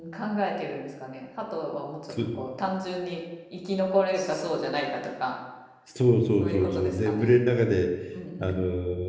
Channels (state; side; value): identical; both; correlation 1.00